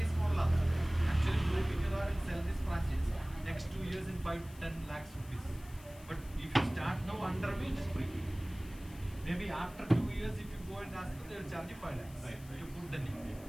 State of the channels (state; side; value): noise; left; hiss, 21 dB below the sound